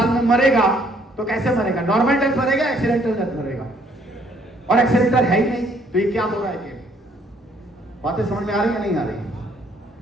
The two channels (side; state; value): both; normal; correlation 0.65